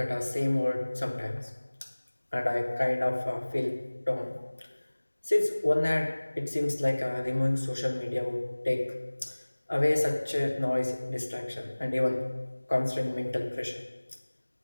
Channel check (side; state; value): both; inverted; correlation -1.00